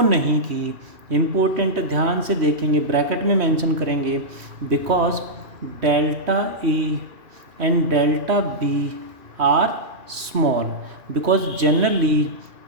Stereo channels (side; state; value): left; late; 2.7 ms